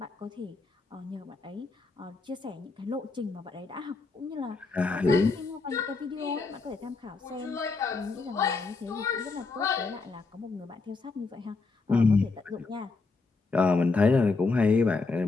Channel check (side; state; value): right; quieter; 4.0 dB